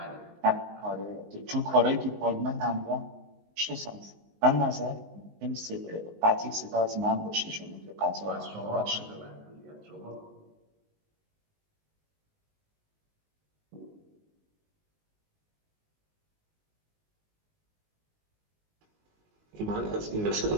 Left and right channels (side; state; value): left; late; 19 ms